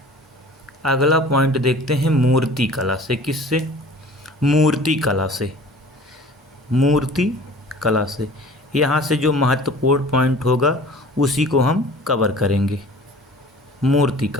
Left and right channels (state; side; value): normal; both; correlation 0.45